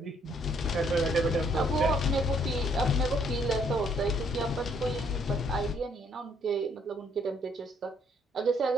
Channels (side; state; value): both; normal; correlation 0.66